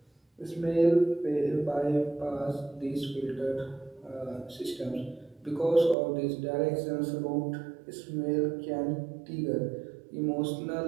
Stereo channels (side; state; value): left; drops out; at 6.0 s